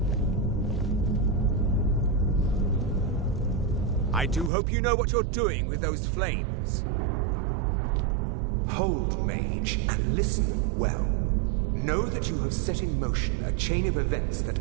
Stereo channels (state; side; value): drops out; left; at 4.5 s